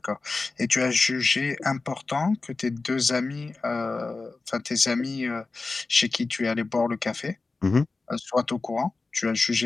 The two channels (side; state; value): right; quieter; 3.8 dB